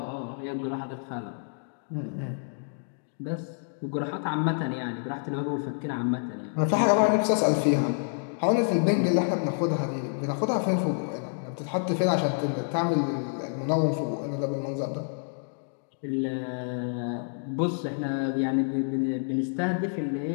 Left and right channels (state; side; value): silent; right; digital silence